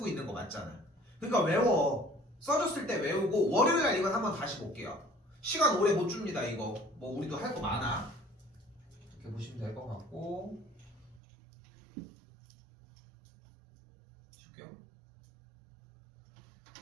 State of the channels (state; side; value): drops out; left; at 11.2 s